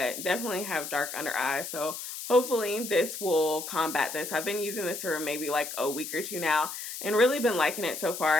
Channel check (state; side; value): noise; left; hiss, 8 dB below the sound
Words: definitely have dark under eyes. So hopefully this will combat this. I've been using this for maybe like a week or 2 now and really been liking it so far.